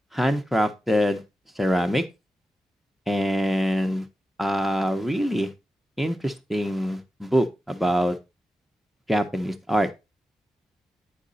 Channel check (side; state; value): both; normal; correlation 0.92